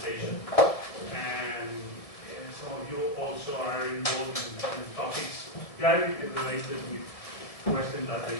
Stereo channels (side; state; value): right; late; 1.7 ms